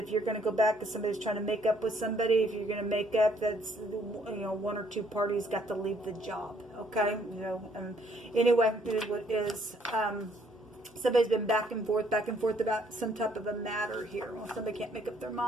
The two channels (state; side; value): normal; both; correlation 0.66